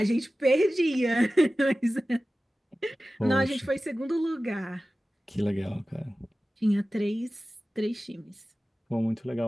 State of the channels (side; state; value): both; normal; correlation 0.96